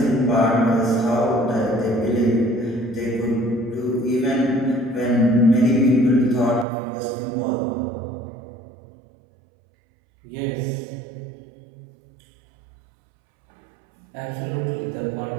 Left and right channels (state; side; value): drops out; left; at 6.7 s